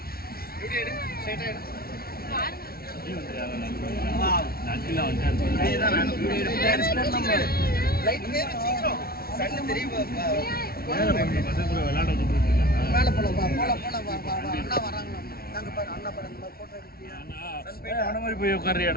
அங்கிள் வந்துட்டாரு. மேலே போல அண்ணா வராங்களா? நாங்கள் பாரு அண்ணா பாரு அந்த மாதிரி ஃபோட்டோ எடுக்கிறியா? அவன மாதிரி போய்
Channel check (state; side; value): late; right; 0.44 ms